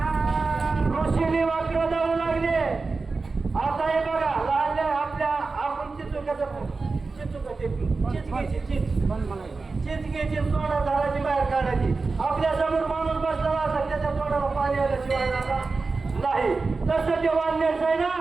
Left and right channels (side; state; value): left; quieter; 4.0 dB